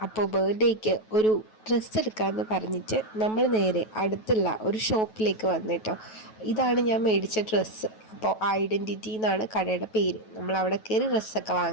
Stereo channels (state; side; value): late; right; 9.2 ms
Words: അപ്പോൾ ബർത്ത്ഡേക്ക് ഒരു ഡ്രസ്സ് എടുക്കാമെന്ന് പറഞ്ഞിട്ട് നമ്മൾ നേരെ അടുത്തുള്ള ഒരു ഷോപ്പിലേക്ക് വന്നിട്ടോ. ഇതാണ് ഞാൻ മേടിച്ച ഡ്രസ്സ്. അപ്പോൾ ഐഡൻറ്റിറ്റി എന്നാണ് കടയുടെ പേര്. നമ്മൾ അവിടെ കയറി ഡ്രസ്സൊക്കെ